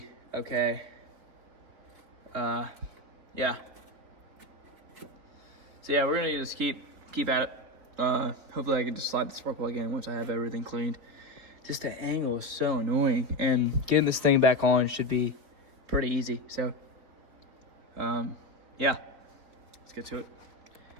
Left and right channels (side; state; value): left; late; 4.0 ms